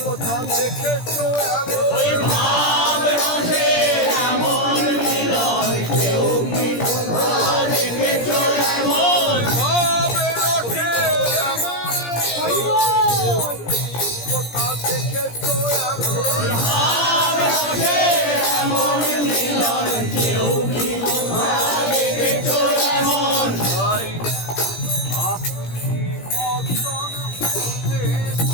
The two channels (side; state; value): right; late; 17 ms